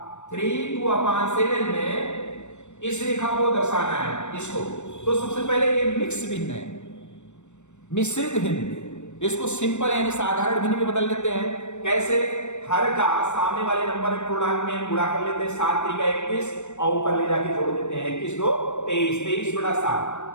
3 2/7 में इस रेखा को दर्शाना है इसको। तो सबसे पहले ये मिक्स भिन्न है, मिश्रित भिन्न, इसको सिंपल यानी साधारण भिन्न में बदल लेते हैं। कैसे? हर का सामने वाले नंबर पूर्णांक में गुणा कर लेते हैं, 7 3 21 और ऊपर ले जाके जोड़ देते हैं, 21 2 23,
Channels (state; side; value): late; right; 0.84 ms